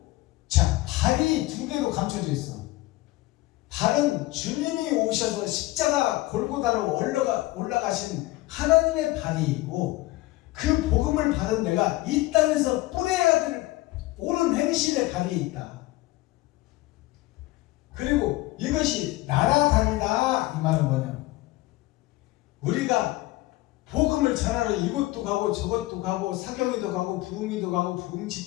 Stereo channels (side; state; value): right; quieter; 18.9 dB